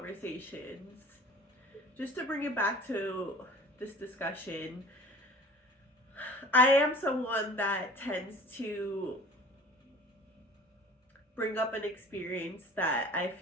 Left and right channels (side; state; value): both; normal; correlation 0.45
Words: just to bring it back to this discussion. I am someone that tends to bring up an experience that I